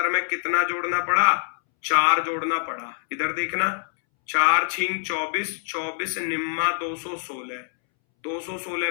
में कितना जोड़ना पड़ा? 4 जोड़ना पड़ा। इधर देखना, 4 छिंग 24, 24 निम्मा 216, 216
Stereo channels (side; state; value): right; silent; 62 dB below the other